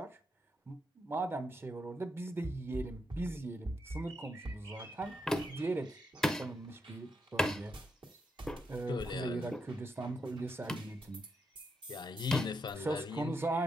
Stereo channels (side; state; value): both; normal; correlation 0.82